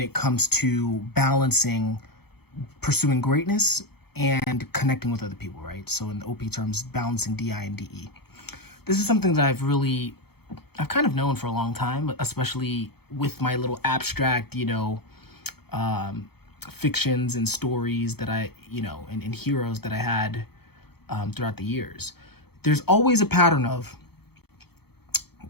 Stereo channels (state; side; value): late; right; 0.96 ms